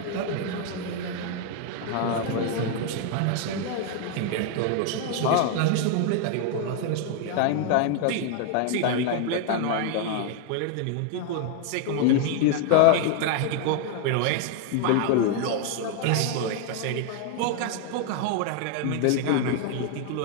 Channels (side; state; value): both; different; correlation 0.00